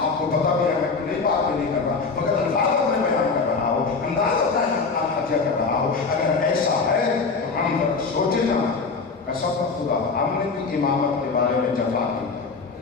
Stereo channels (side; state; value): right; quieter; 4.5 dB